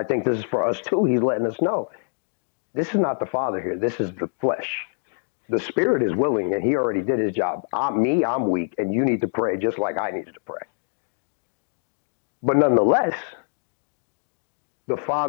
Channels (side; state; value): right; silent; digital silence